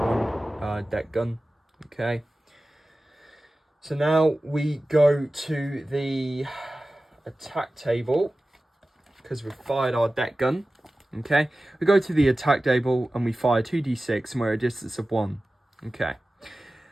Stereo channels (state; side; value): normal; both; correlation 0.96